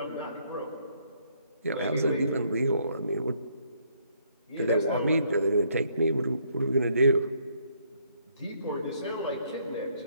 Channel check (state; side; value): inverted; both; correlation -0.69